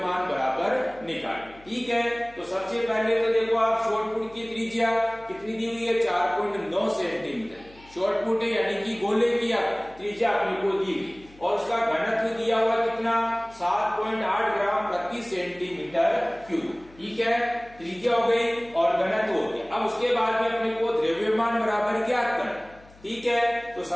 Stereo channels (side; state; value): left; noise; hum, 25 dB below the sound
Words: बराबर निकालेंगे। ठीक है, तो सबसे पहले तो देखो आप, शॉर्ट पुट की त्रिज्या कितनी दी हुई है? 4.9 सेंटीमीटर शॉर्ट पुट है, यानी कि गोले की त्रिज्या अपने को दी हुई और उसका घनत्व दिया हुआ कितना? 7.8 ग्राम प्रति सेंटीमीटर क्यूब। ठीक है, त्रिज्या हो गई और घनत्व हो गया। अब उसके बाद में अपने को द्रव्यमान बराबर ज्ञात करना। ठीक है, तो